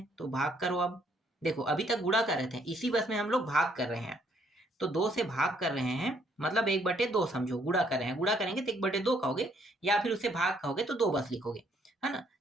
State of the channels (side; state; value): both; normal; correlation 0.68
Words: तो भाग करो। अब देखो अभी तक गुणा कर रहे थे, इसी बस में हम लोग भाग कर रहे हैं। तो 2 से भाग कर रहे हैं मतलब 1/2 समझो, गुणा कर रहे हैं। गुणा करेंगे तो 1/2 कहोगे, या फिर उसे भाग कहोगे तो 2 बस लिखोगे, है ना।